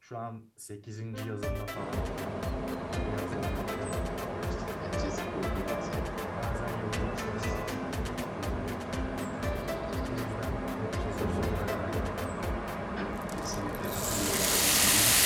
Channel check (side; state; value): both; identical; correlation 1.00